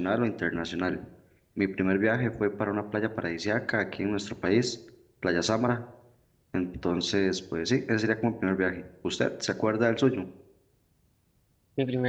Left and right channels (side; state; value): both; identical; correlation 1.00